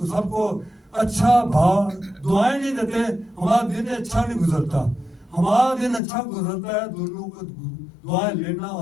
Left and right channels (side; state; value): right; drops out; at 6.0 s